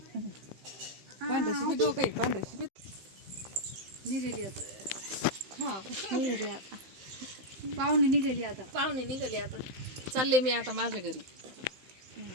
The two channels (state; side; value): late; left; 15 ms